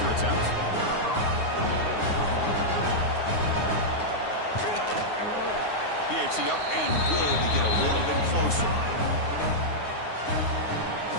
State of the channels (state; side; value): late; right; 9.6 ms